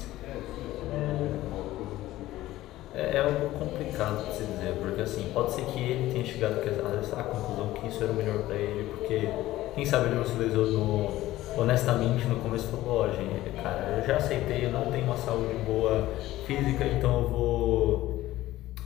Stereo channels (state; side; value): quieter; right; 15.8 dB